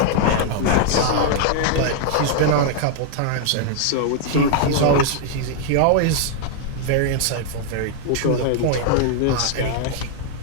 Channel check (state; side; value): different; both; correlation 0.00